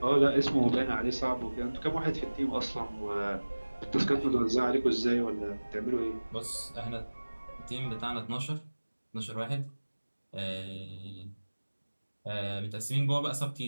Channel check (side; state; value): both; inverted; correlation -1.00